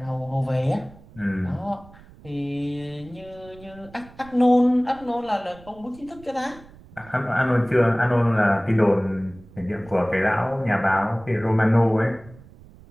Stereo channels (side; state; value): right; noise; rumble, 22 dB below the sound